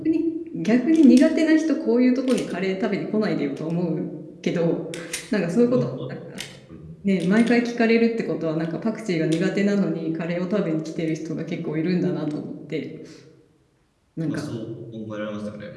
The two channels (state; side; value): identical; both; correlation 1.00